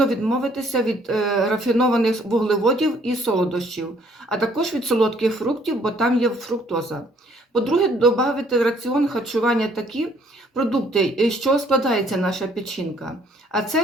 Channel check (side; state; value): both; normal; correlation 0.63